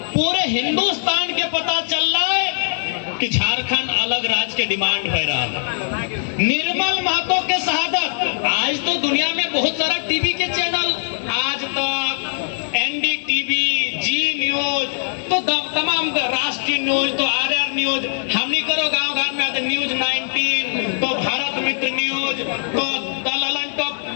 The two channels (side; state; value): right; silent; 63 dB below the other